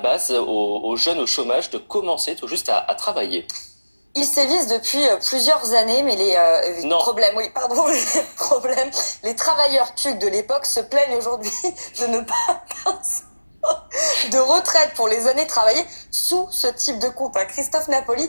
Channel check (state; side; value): inverted; both; correlation -1.00